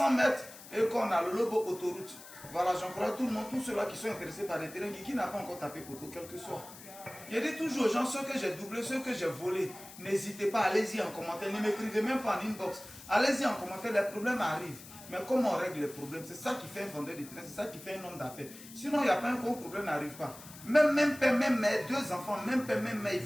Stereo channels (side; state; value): left; noise; hiss, 17 dB below the sound